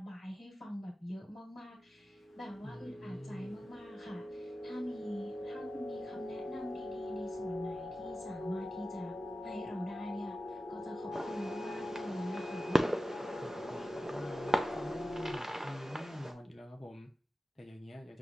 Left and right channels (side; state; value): both; normal; correlation 0.94